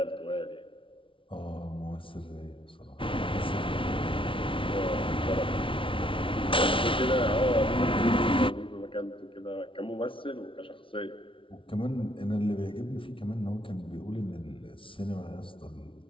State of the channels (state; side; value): late; right; 0.25 ms